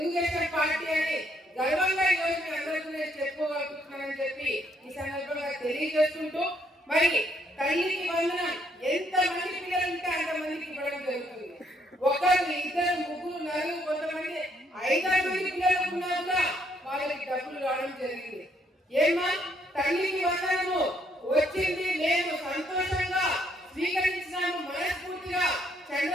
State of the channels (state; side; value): normal; both; correlation 0.71